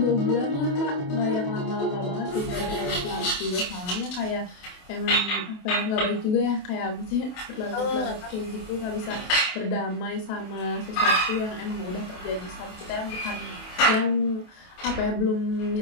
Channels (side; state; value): right; late; 28 ms